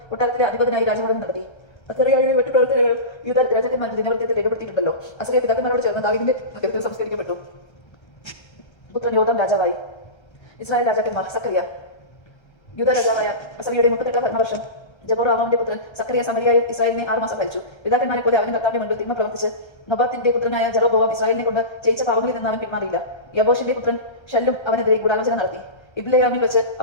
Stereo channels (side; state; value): right; late; 1.3 ms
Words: കൊട്ടാരത്തിലെ അധിപതിനായി രാജഭരണം നടത്തി. അസറിയയുടെ മറ്റു പ്രവർത്തനങ്ങൾ യൂദാ രാജാക്കന്മാരുടെ ദിനവൃത്തത്തിൽ രേഖപ്പെടുത്തിയിട്ടുണ്ടല്ലോ. അസറിയ പിതാക്കന്മാരോട് ചേർന്ന് ദാവീദിന്റെ നഗരത്തിൽ സംസ്കരിക്കപ്പെട്ടു. പുത്രൻ യോഥാം രാജാവായി. ഇസ്രായേൽ രാജാക്കന്മാർ. സക്കറിയ. യൂദാ രാജാവായ അസറിയയുടെ 38-ാം ഭരണവർഷം ജെറോബോവാമിന്റെ പുത്രൻ സക്കറിയ സമരിയായിൽ ഇസ്രായേലിനെ 6 മാസം ഭരിച്ചു. പിതാക്കന്മാരെ പോലെ അവന് കർത്താവിന്റെ മുൻപിൽ തിന്മ പ്രവർത്തിച്ച് നബാത്തിന്റെ പുത്രനായ ജെറോബോവാം ഇസ്രായേലിനെ കൊണ്ട് ചെയ്യിച്ച പാപങ്ങളിൽ നിന്ന് അവൻ പിന്മാറിയില്ല. യബോഷിന്റെ പുത്രൻ ഷല്ലും അവനെതിരെ ഗൂഢാലോചന നടത്തി. ഇബ്ലെയാമിൽ വെച്ച്